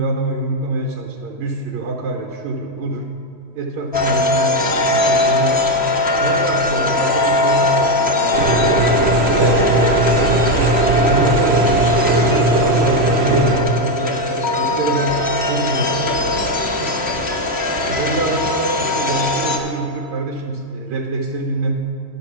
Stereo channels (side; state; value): left; late; 3.1 ms